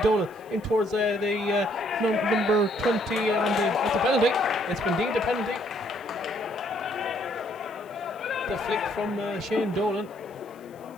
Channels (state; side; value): noise; left; hiss, 30 dB below the sound